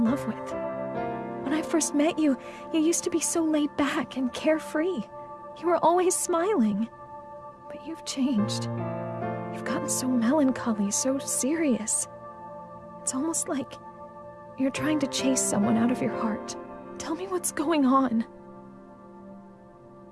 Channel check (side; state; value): both; identical; correlation 1.00